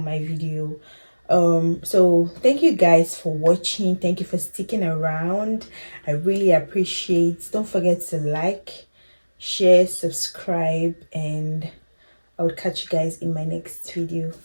video. So thank you guys for watching. Thank you for sticking around. I really appreciate. Don't forget to like, share, subscribe, and I will catch you guys in my next video.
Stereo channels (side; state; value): both; inverted; correlation -1.00